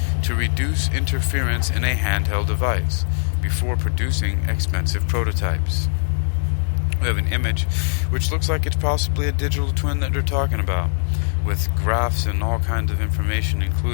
to reduce interference in a handheld device before producing expensive prototypes. We have an image which looks like it's possibly a digital twin that they're talking about, with graphs and all kinds of information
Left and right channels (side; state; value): right; silent; 65 dB below the other